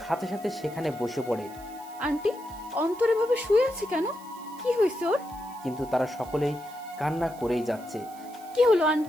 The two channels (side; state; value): right; noise; hiss, 22 dB below the sound